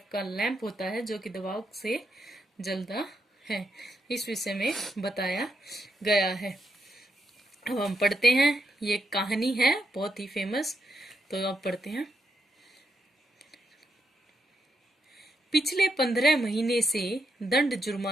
का लैंप होता है जो कि दबाव से जलता है। इस विषय में बताया गया है। अब हम पढ़ते हैं। ये कहानी है बहुत ही फेमस, तो अब पढ़ते हैं। पिछले 15 महीने से दंड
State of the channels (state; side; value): normal; both; correlation 0.81